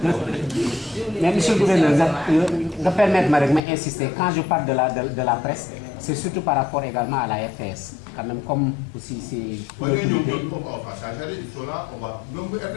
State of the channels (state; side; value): drops out; right; at 3.6 s